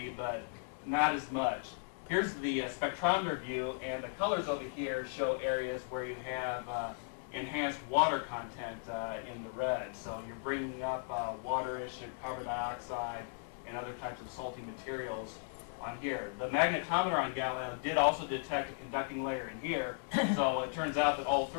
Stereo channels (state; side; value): silent; right; digital silence